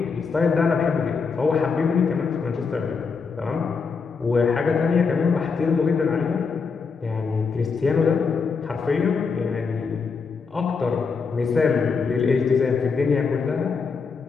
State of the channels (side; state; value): right; quieter; 5.2 dB